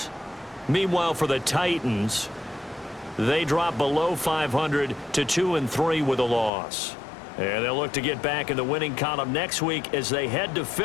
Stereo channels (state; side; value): drops out; right; at 6.5 s